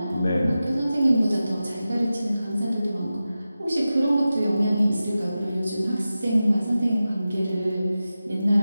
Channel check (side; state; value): both; inverted; correlation -0.94